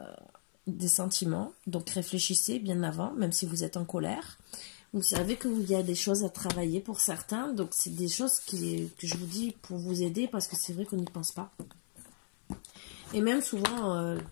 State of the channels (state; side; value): silent; right; 55 dB below the other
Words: des sentiments, donc réfléchissez bien avant, même si vous êtes en colère. Vous savez qu'il y a des choses à travailler pour certains, donc c'est des choses que je vous dis pour vous aider, parce que c'est vrai qu'on n'y pense pas. Et même souvent,